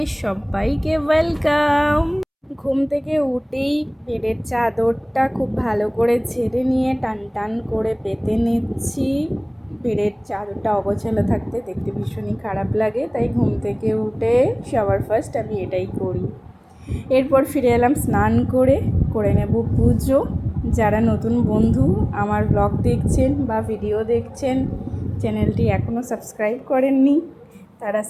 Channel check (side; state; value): both; identical; correlation 1.00